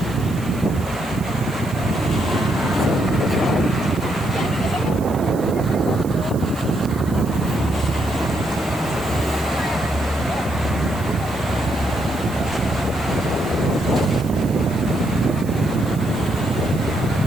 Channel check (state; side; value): noise; right; hiss, 19 dB below the sound